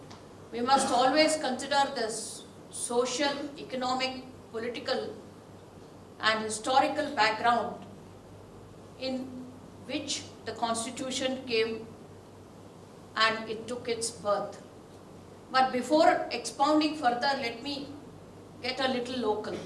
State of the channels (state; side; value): identical; both; correlation 1.00